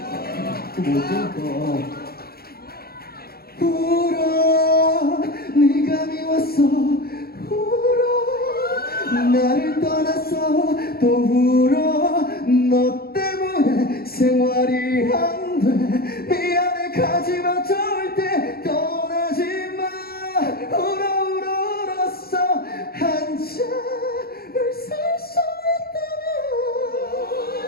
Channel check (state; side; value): late; right; 0.44 ms